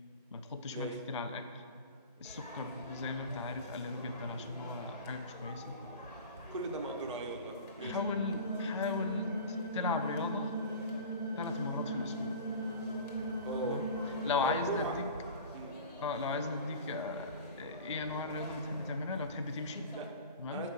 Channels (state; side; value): inverted; both; correlation -0.36